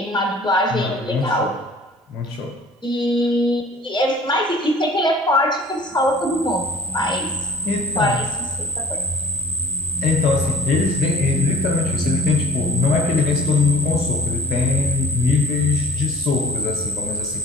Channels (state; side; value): normal; both; correlation 0.49